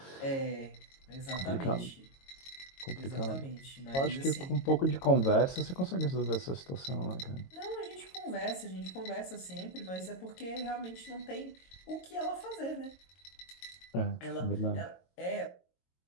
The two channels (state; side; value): late; right; 22 ms